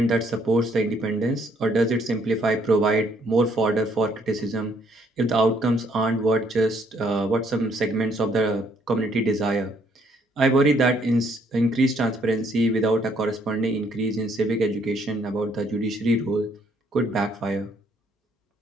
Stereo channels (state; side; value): normal; both; correlation 0.67